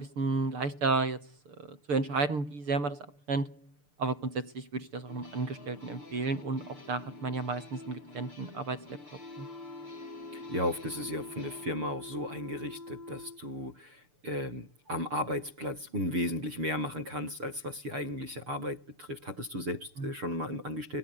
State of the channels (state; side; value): late; left; 6.8 ms